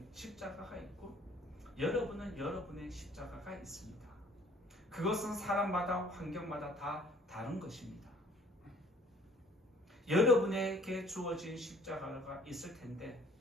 십자가가 있고 여러분은 여러분의 십자가가 있습니다. 그것은 사람마다 환경마다 다 다른 것입니다. 여러분에게 주어진 십자가가 있을 텐데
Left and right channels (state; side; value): normal; both; correlation 0.56